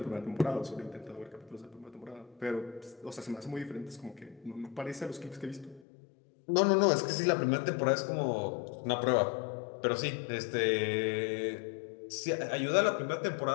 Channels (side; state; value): right; drops out; at 5.8 s